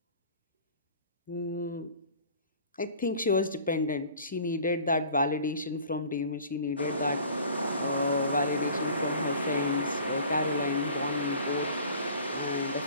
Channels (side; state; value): both; inverted; correlation -0.47